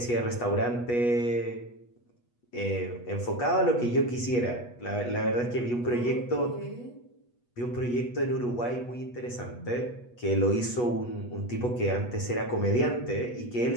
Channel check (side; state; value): right; late; 8.2 ms